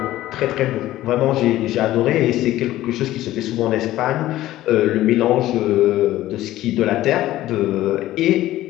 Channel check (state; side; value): quieter; right; 15.0 dB